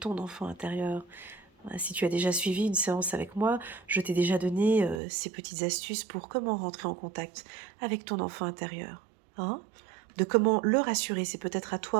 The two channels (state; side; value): drops out; left; at 5.0 s